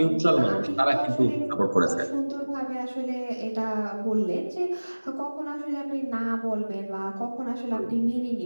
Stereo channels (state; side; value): inverted; both; correlation -1.00